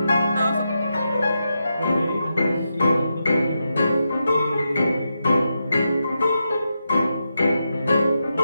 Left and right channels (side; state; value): both; inverted; correlation -0.87